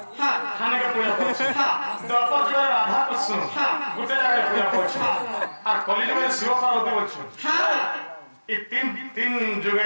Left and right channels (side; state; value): both; inverted; correlation -1.00